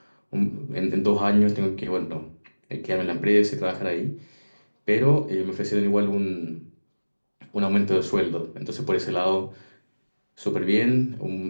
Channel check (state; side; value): inverted; both; correlation -1.00